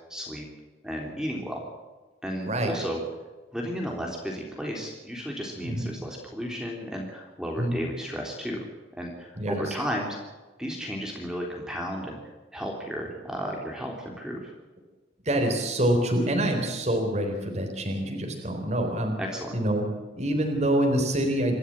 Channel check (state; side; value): normal; both; correlation 0.61